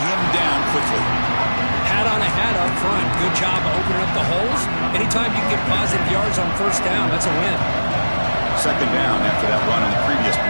down quickly. Hat on a hat up front. Good job of opening up the holes. Anytime you get positive yards on 1st down, that's a win. 2nd down after that run in the previous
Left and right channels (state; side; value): inverted; both; correlation -1.00